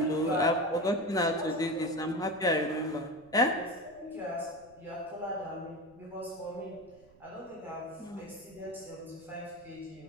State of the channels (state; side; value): noise; right; rumble, 26 dB below the sound